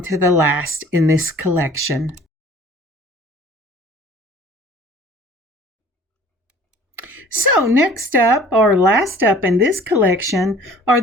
to the last in this collection. So next up, or last up in this collection, are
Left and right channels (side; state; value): both; normal; correlation 0.49